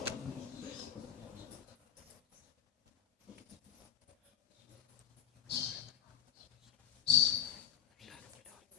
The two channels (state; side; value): quieter; right; 9.9 dB